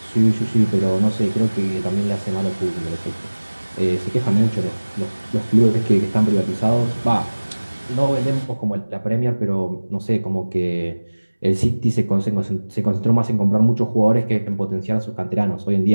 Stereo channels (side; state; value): both; inverted; correlation -1.00